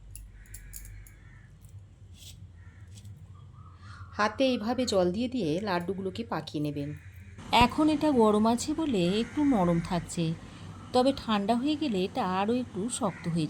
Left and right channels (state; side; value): identical; both; correlation 1.00